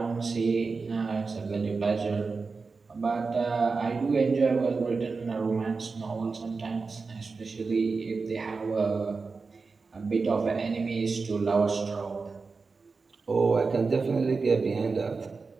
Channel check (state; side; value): quieter; left; 4.4 dB